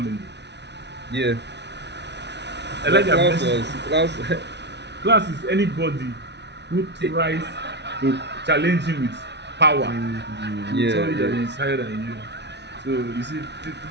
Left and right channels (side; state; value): left; late; 0.50 ms